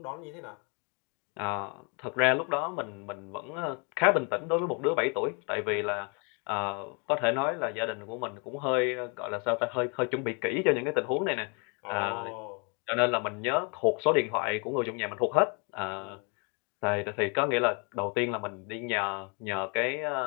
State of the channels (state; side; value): quieter; right; 34.9 dB